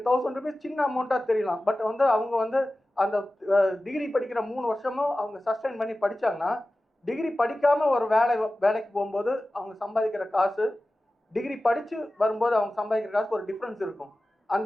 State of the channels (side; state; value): both; normal; correlation 0.96